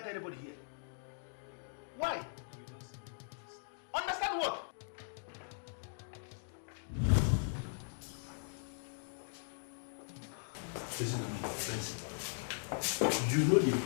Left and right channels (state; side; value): silent; right; digital silence